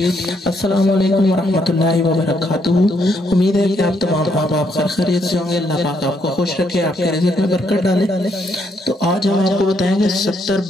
अस्सलामु अलैकुम वरहमतुल्लाहि वबरकातुहू। उम्मीद है कि आप तमाम आप खैरियत से होंगे। अल्लाह पाक आपको खुश रखे, आपके रिज़्क़ में बरकत डाले। तो आज हम आपको बताएंगे 70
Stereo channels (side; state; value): both; normal; correlation 0.74